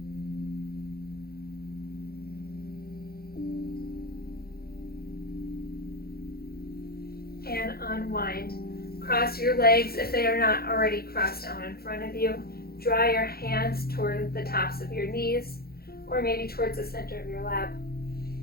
And unwind. Cross your legs if they are not already crossed down in front of you. Draw your hands toward the tops of your knees, or maybe towards the center of your lap.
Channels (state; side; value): late; right; 0.45 ms